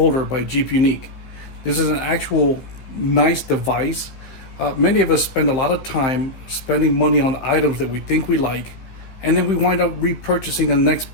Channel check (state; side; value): late; right; 15 ms